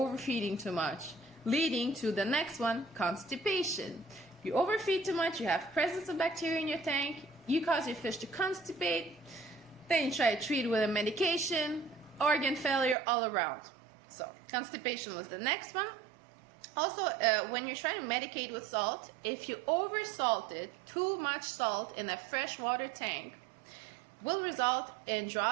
too much, leading to the next one, constipation. You overfeed too much, you have presence of bacteria in your tank, you cause your fish to constipate, then you try to treat it with a medication, organ failure all around. So constipation was the next one. Also, when you're trying to medicate with salt, if you oversalted, too much salt in a freshwater tank will result in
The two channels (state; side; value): drops out; left; at 13.0 s